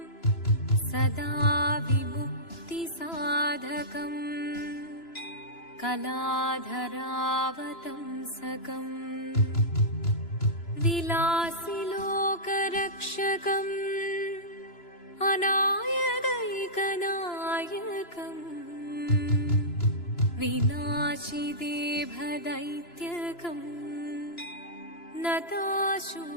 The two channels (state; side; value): late; right; 2.9 ms